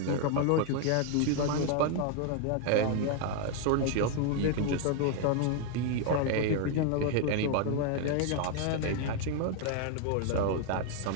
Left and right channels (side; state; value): both; different; correlation 0.00